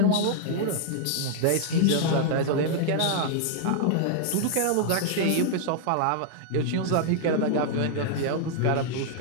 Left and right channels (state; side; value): different; both; correlation -0.01